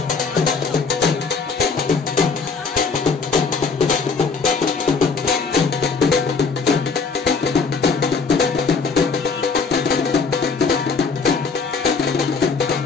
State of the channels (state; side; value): quieter; right; 4.9 dB